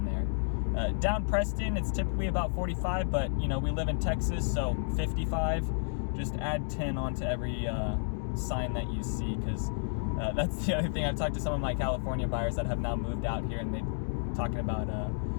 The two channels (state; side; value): silent; right; digital silence